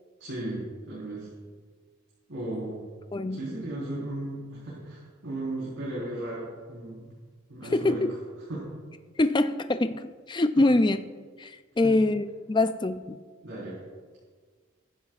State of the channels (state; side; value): normal; both; correlation 0.75